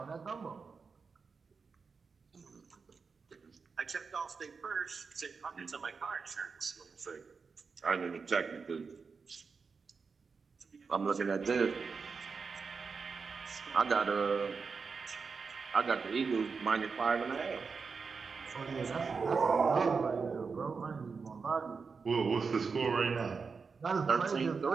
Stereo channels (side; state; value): left; quieter; 5.1 dB